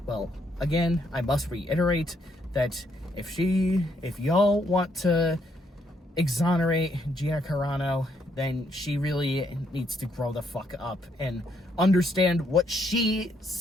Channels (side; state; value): both; normal; correlation 0.73